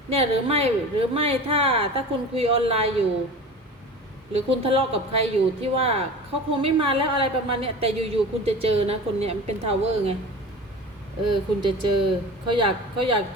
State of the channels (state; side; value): normal; both; correlation 0.35